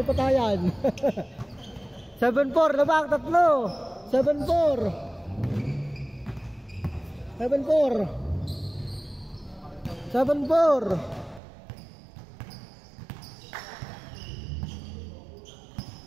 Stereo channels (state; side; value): drops out; left; at 11.4 s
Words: patayan. 7-4, labang, tatlo. 7-4. 7-4. 7-4.